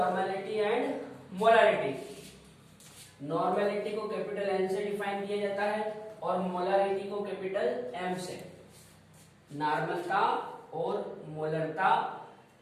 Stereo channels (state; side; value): identical; both; correlation 1.00